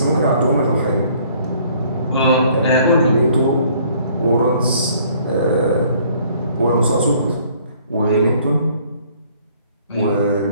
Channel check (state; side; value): inverted; both; correlation -0.60